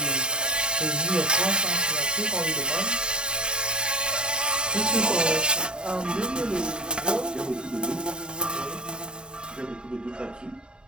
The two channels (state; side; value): late; left; 0.049 ms